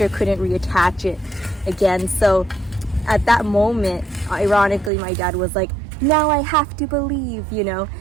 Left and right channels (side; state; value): left; drops out; at 4.9 s